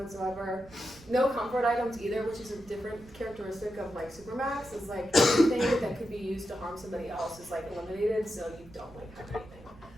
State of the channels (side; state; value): right; noise; rumble, 21 dB below the sound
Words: No comfort items either, which is a different characteristic of like Supermax, is like anything that could be used to harm somebody else is like eliminated, so you don't like have anything.